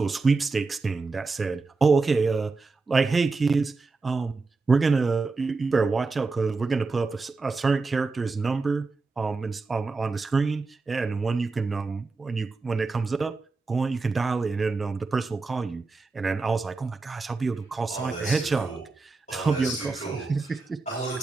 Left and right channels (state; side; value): quieter; left; 4.0 dB